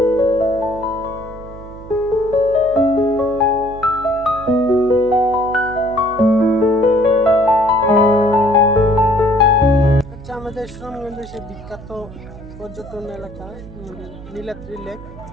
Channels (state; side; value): noise; right; hum, 16 dB below the sound